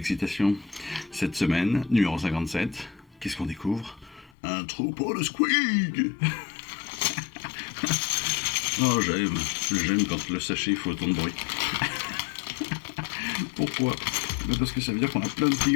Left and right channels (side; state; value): right; drops out; at 4.3 s